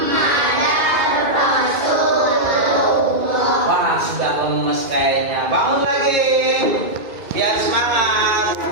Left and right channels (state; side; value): late; left; 2.4 ms